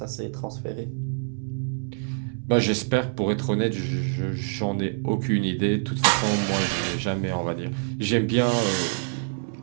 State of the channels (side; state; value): left; silent; 61 dB below the other